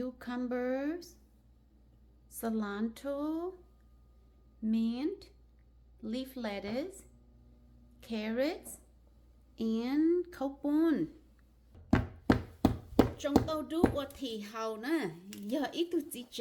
cilantro, mint, leaf lettuce, carrots, and copun. Trong tàu đu qua thì hầu nè, giờ ít tụi chỉ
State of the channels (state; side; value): identical; both; correlation 1.00